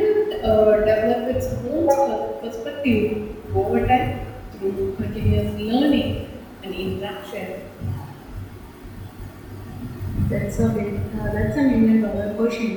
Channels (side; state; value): both; identical; correlation 1.00